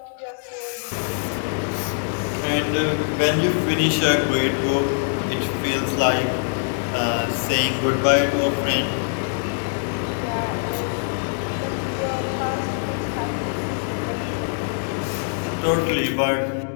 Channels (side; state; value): right; silent; digital silence